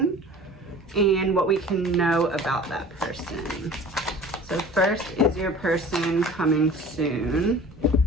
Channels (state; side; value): normal; both; correlation 0.43